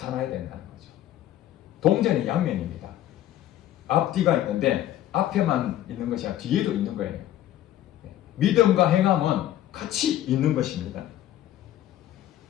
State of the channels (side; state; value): right; quieter; 12.8 dB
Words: 된다는 거죠. 동전의 양면입니다. 앞뒤가 있는데 앞에만 있는 것이 아니라 뒤에도 있는 거예요. 믿음과 행함은 같이 있는 것입니다.